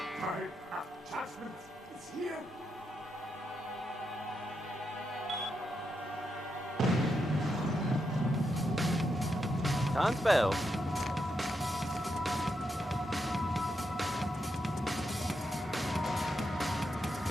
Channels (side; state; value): both; normal; correlation 0.84